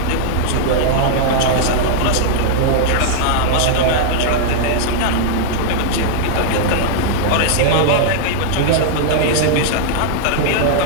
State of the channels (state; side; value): different; both; correlation -0.01